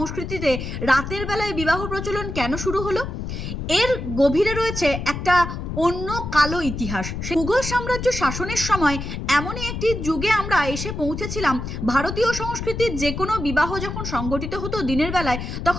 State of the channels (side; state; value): left; noise; rumble, 6 dB below the sound